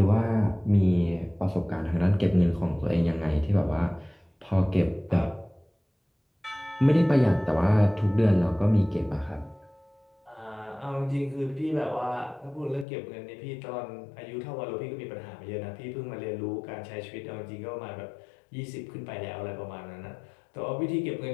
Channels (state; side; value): drops out; right; at 12.9 s